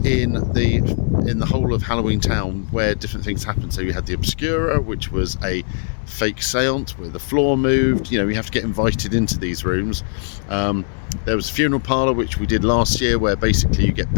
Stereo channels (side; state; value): right; silent; digital silence